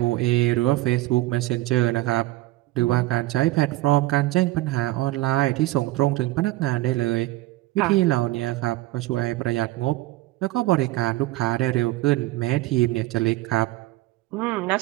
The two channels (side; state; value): left; quieter; 18.1 dB